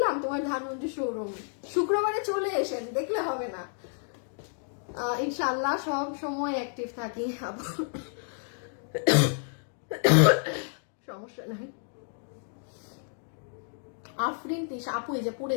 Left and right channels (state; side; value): silent; right; 58 dB below the other